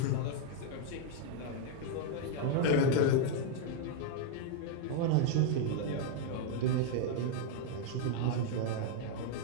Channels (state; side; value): different; both; correlation 0.00